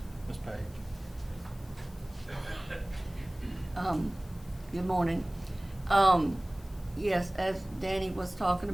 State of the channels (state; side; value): noise; left; hiss, 26 dB below the sound